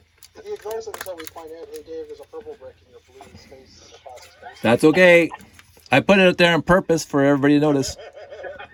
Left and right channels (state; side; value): identical; both; correlation 1.00